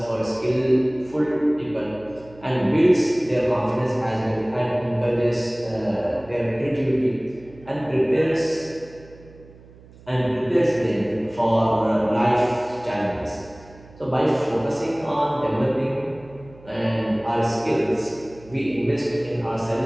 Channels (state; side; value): noise; right; hum, 23 dB below the sound